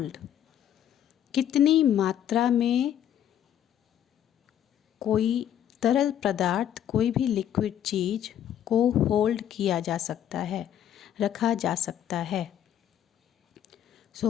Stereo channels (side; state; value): right; quieter; 10.5 dB